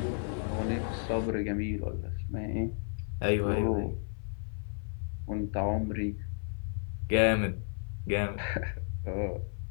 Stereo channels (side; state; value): right; silent; 55 dB below the other